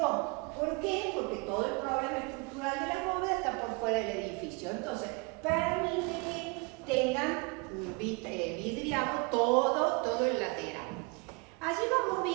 ¿Por qué? Porque todo el problema estructural de la bóveda está por fuera del edificio. Entonces, permite que tengan vidriado todo el lateral. Allí vamos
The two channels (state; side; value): quieter; left; 29.0 dB